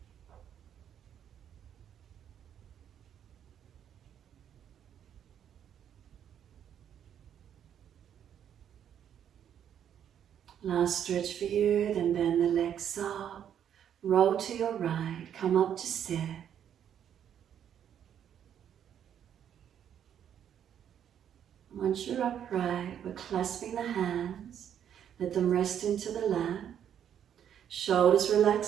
Last stretch for you, then bend the legs up. Roll to your right, come up to sit. Once you're upright, we're clasping the hands. Let them rest into the lap. Shoulders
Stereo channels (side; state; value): left; quieter; 9.3 dB